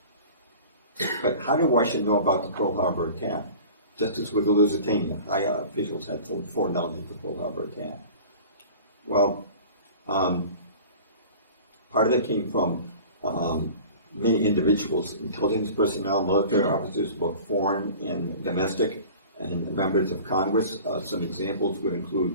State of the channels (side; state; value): both; inverted; correlation -0.41